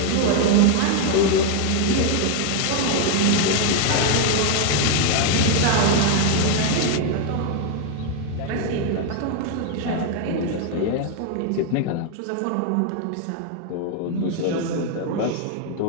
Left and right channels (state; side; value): different; both; correlation 0.00